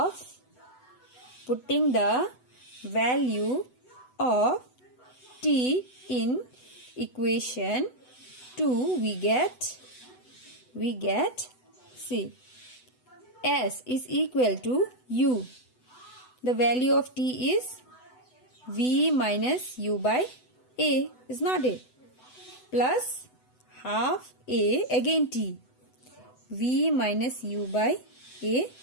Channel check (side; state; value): right; late; 8.0 ms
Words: of T in equation 2, we get see, S is equal to U. The value of T is V minus U by A, is not it? Plus half A, again T, V minus U by A